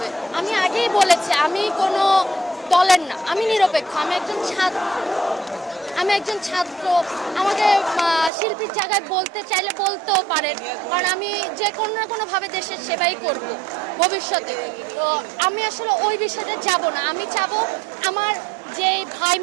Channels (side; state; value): left; drops out; at 8.3 s